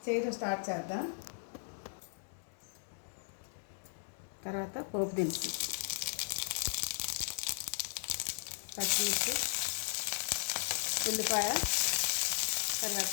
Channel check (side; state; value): right; silent; digital silence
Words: చేయడం స్టార్ట్ చేద్దాం. తర్వాత పోపు దినుసులు, పచ్చిమిర్చి, ఉల్లిపాయ,